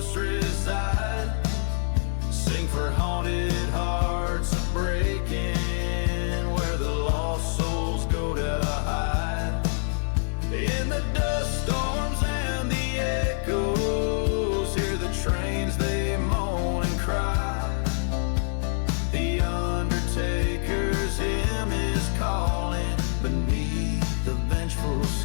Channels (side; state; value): right; silent; digital silence